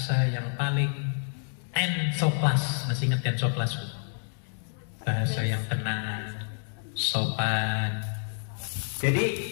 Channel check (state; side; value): silent; right; digital silence